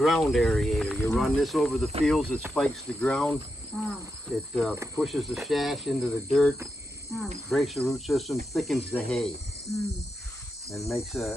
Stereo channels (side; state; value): both; normal; correlation 0.86